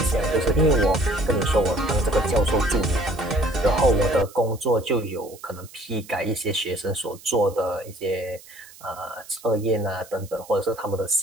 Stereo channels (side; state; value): right; noise; hiss, 21 dB below the sound